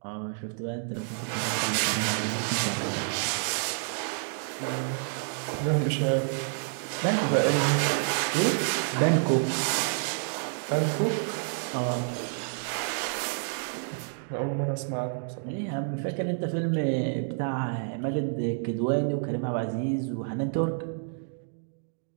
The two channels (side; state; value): left; silent; digital silence